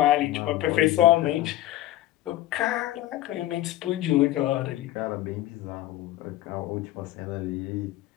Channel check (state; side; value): quieter; right; 15.2 dB